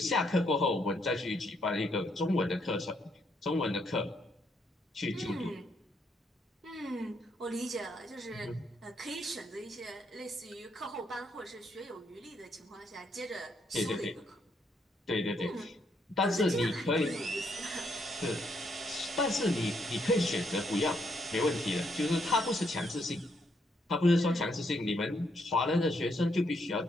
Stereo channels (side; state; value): both; normal; correlation 0.75